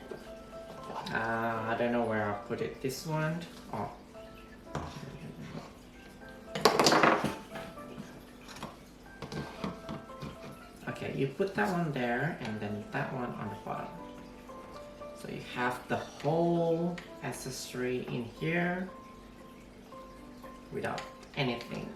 I don't know where I'll put it. This one. Oh. Okay, you put that one there and then that one on the bottom. So you have the whole accessory in here without anything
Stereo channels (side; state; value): both; identical; correlation 1.00